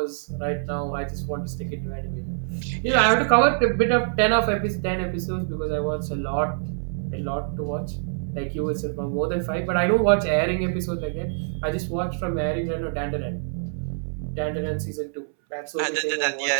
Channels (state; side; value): silent; left; 61 dB below the other